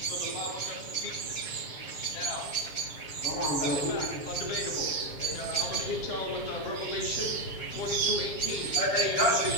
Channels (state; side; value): late; right; 7.2 ms